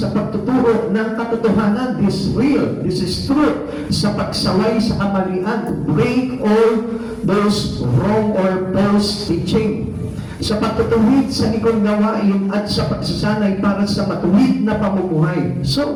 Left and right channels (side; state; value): both; identical; correlation 1.00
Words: pagtuturo ng katotohanan. This is real, this is truth, sa pagsaway sa kamalian, break all those wrong or false teaching, sa pagtutuwid sa ikong gawain at sa pagsasanay para sa matuwid na pamumuhay.